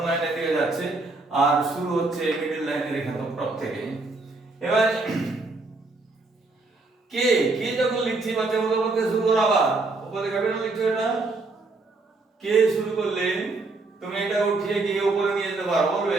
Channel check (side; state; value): left; quieter; 3.4 dB